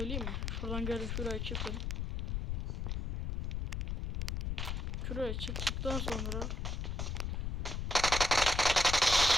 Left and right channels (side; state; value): left; noise; rumble, 2 dB below the sound